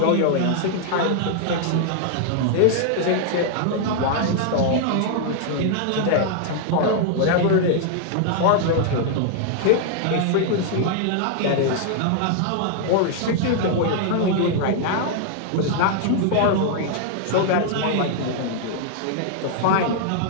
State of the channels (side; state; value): both; different; correlation 0.00